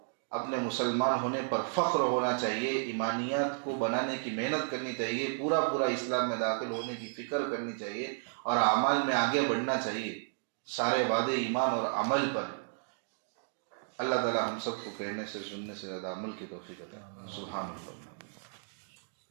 اپنے مسلمان ہونے پر فخر ہونا چاہیے، ایمانیات کو بنانے کی محنت کرنی چاہیے، پورا اسلام میں داخل ہونے کی فکر کرنی چاہیے اور اعمال میں آگے بڑھنا چاہیے. سارے وعدے ایمان اور عمل پر. اللہ تعالی ہم سب کو کہنے سے سننے سے زیادہ عمل کی توفیق عطا. سبحان اللہ.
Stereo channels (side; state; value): left; silent; digital silence